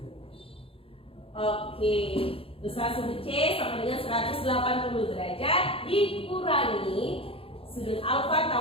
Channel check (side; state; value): right; late; 0.27 ms